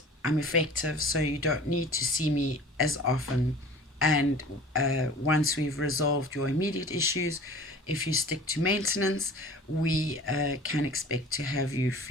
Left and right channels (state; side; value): normal; both; correlation 0.43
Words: I'm effective, so you don't need to see me as often. And once we've resolved your immediate issues, if you stick to maintenance, we can expect to have you